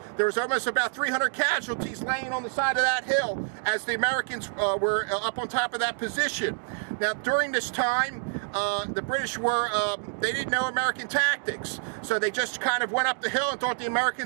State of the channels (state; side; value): silent; left; digital silence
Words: There was almost about 300 casualties laying on the side of that hill as the Americans were up on top of that position. Now during this time, the British they didn't know American tactics, so they just kind of went up the hill and thought the